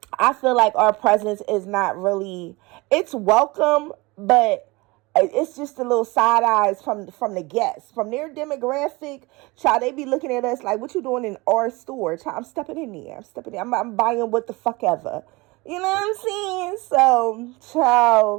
I feel like our presence is not really, it's welcome, but it's just a little side eyes from the guests, from their demographic. Child, they be looking at us like, what you doing in our store? Child, I'm stepping in there. I'm buying what the fuck ever. You know what I'm saying? So,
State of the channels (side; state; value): left; quieter; 23.7 dB